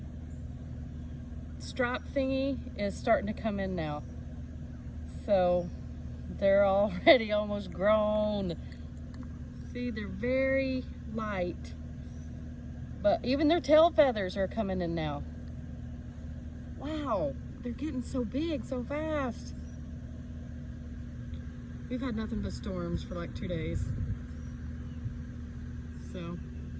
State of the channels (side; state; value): both; identical; correlation 1.00